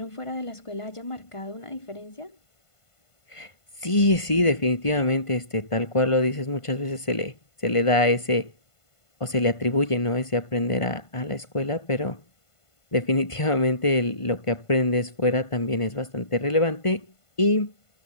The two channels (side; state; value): right; late; 1.5 ms